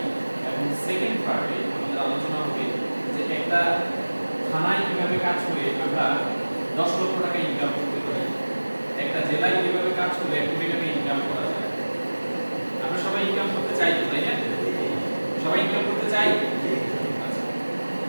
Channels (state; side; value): inverted; both; correlation -1.00